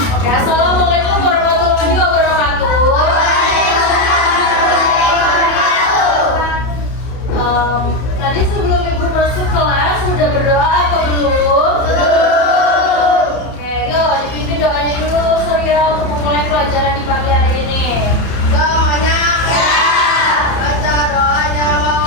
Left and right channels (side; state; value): right; late; 31 ms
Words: Ya, Assalamualaikum warahmatullahi wabarakatuh. Tadi sebelum ibu masuk kelas sudah berdoa apa belum? Oke, yuk dipimpin doanya dulu Surya untuk memulai pelajaran di pagi hari ini. Doanya baca doanya